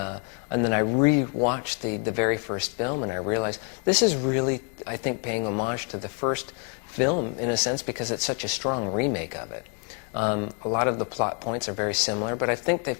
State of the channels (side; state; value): right; quieter; 34.9 dB